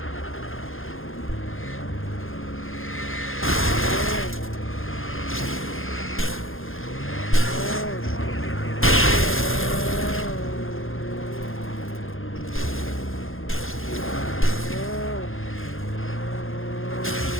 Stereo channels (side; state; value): right; late; 0.60 ms